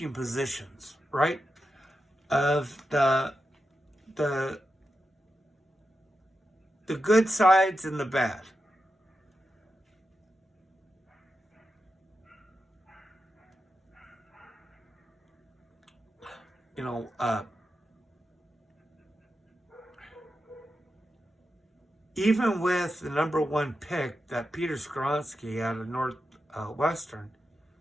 positions, right? Of the good sides and the bad. Even with the number one pick, that Peter Skronsky out of Northwestern,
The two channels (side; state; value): both; normal; correlation 0.89